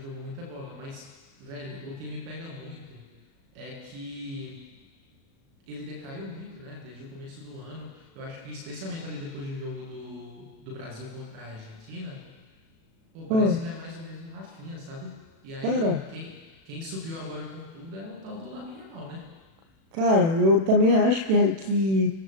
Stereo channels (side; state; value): left; late; 36 ms